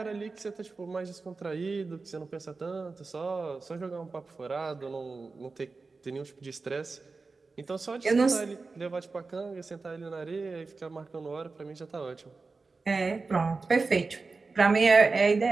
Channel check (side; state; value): left; quieter; 4.0 dB